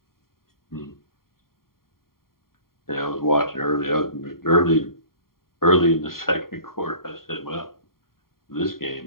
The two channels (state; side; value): late; right; 0.93 ms